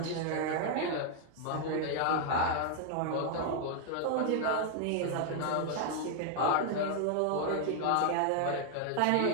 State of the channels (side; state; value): both; different; correlation 0.00